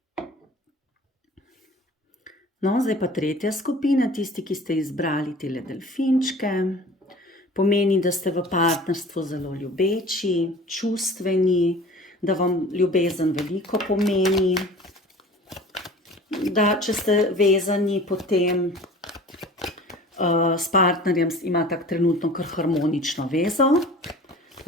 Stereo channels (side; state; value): both; normal; correlation 0.43